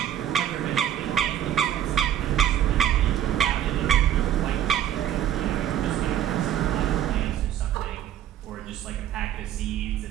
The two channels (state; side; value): quieter; left; 11.0 dB